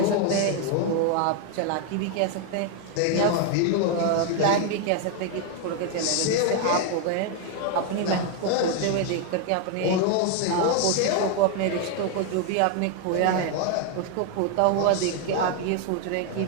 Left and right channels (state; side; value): different; both; correlation 0.00